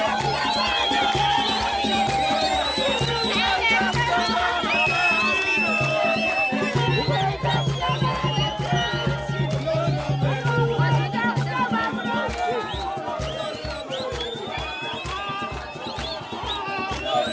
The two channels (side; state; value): both; identical; correlation 1.00